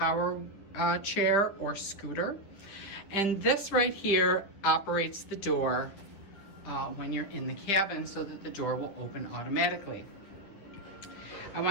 chair or scooter. And this right here operates the door when you're in the cabin so that the door will open automatically. I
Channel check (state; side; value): late; right; 9.9 ms